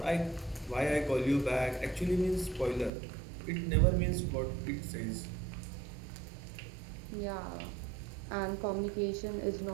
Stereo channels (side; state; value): left; drops out; at 2.9 s